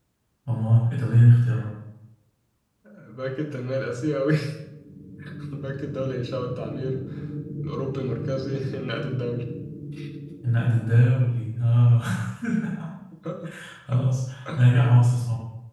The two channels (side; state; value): both; identical; correlation 1.00